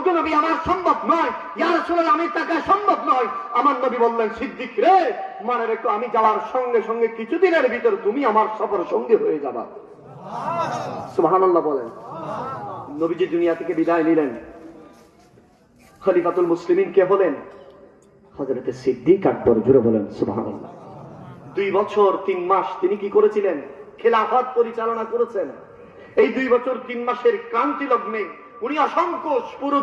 নবী, আমার সম্ভব নয়। ইয়া রাসূলুল্লাহ, আমি তাকে সম্ভব নয়। আমার নবী বললেন, সিদ্দিক রে, মনে রেখো, আমি যাওয়ার সঙ্গে সঙ্গে কিছুদিনের ভিতর তুমি আমার সফর সঙ্গী হয়ে যাবা। সুবহানাল্লাহ বলেন। নবীজি দুনিয়া থেকে বিদায় নিলেন। খলিফাতুল মুসলিমিন কে হলেন? হযরতে সিদ্দিক আকবর। জোরে বলেন সুবহানাল্লাহ। 2 বছর 3 মাস তিনি কি করেছিলেন? খেলাফত পরিচালনা করেছেন। এই 2 বছর 3 মাসের ক্রান্তি লগ্নে উনি অসংখ্য পুরো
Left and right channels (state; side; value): identical; both; correlation 1.00